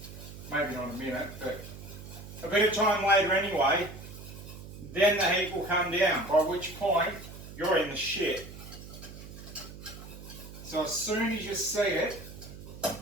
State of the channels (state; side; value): noise; right; hum, 14 dB below the sound